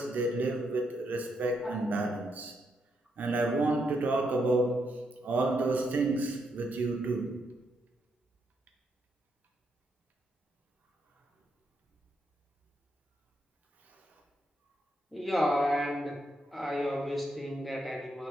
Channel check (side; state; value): both; normal; correlation 0.79